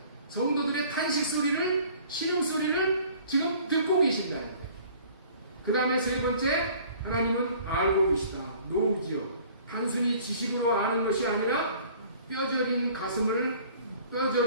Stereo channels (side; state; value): both; inverted; correlation -0.52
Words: 성도들의 탄식 소리를, 신음 소리를 지금 듣고 계신다. 그 다음에 세 번째, 하나님은 알고 계시다. 노우지요. 단순히 지식으로 아는 것이 아니라 뼈저린 가슴을,